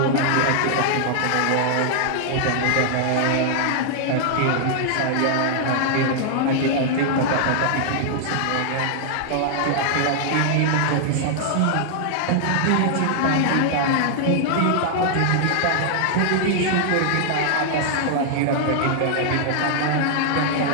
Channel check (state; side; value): different; both; correlation -0.01